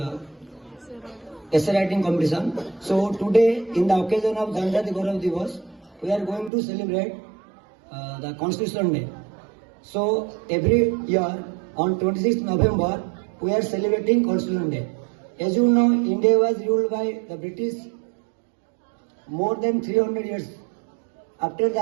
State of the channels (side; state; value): left; drops out; at 6.5 s